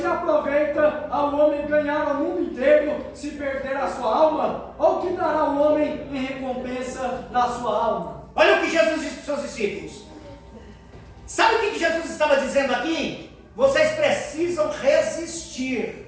aproveita ao homem ganhar o mundo inteiro, se perder a sua alma? Ou que dará o homem em recompensa da sua alma? Olha o que Jesus disse para os seus discípulos. Sabe o que Jesus estava dizendo aqui? Vocês precisam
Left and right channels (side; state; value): both; identical; correlation 1.00